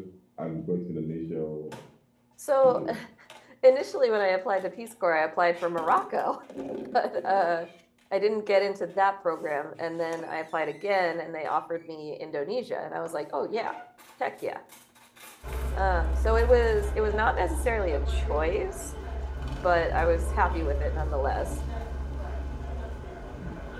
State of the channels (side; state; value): both; identical; correlation 1.00